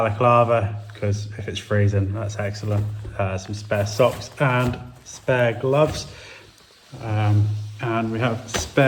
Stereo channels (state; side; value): identical; both; correlation 1.00